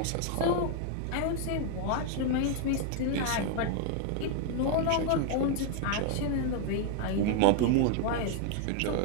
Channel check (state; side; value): different; both; correlation 0.00